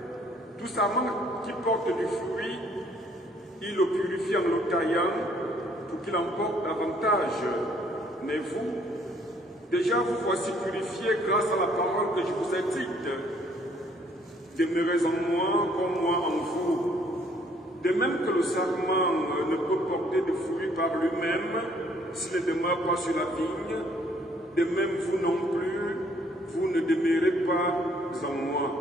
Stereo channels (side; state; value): both; normal; correlation 0.63